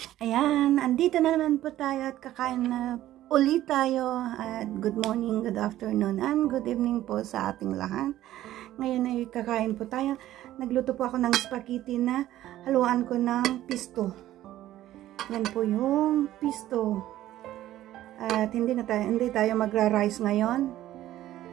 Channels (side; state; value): left; quieter; 13.9 dB